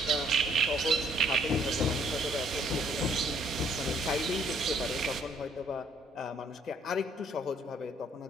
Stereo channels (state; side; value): normal; both; correlation 0.63